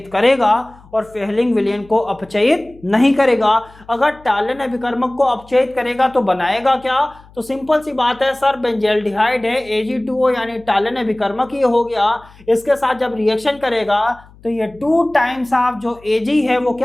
करेगा और फेहलिंग विलयन को अपचयित नहीं करेगा। अगर टालेन अभिकर्मक को अपचयित करेगा तो बनाएगा क्या? तो सिंपल सी बात है सर, बेंजल्डिहाइड है, Ag2O यानी टालेन अभिकर्मक ये हो गया। इसके साथ जब रिएक्शन करेगा तो ये 2 टाइम्स ऑफ जो Ag है वो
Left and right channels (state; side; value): noise; left; hum, 25 dB below the sound